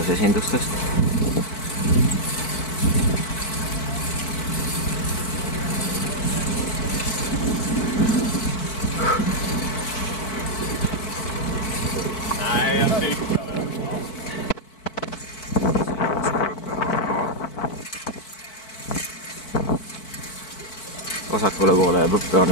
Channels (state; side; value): late; right; 4.5 ms